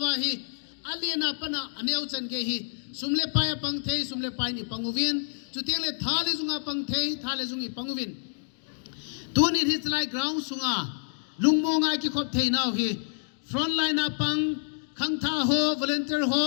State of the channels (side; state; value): right; silent; digital silence